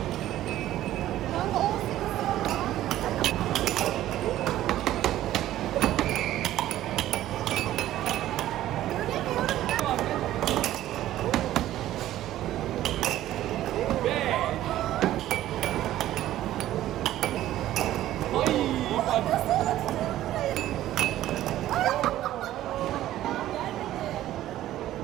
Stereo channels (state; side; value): quieter; left; 13.7 dB